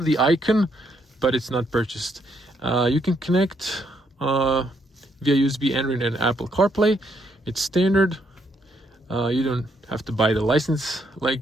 the icon, but it's not purchased. You can connect via USB, Android, and Apple CarPlay. It's standard. You don't have to buy the license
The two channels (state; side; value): normal; both; correlation 0.74